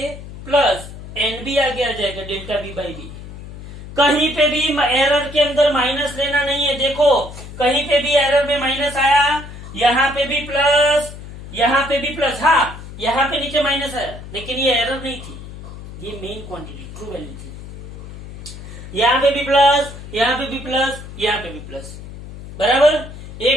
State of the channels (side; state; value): left; noise; hum, 13 dB below the sound